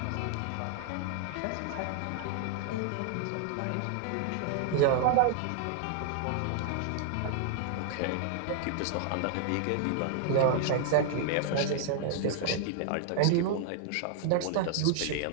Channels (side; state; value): both; different; correlation 0.00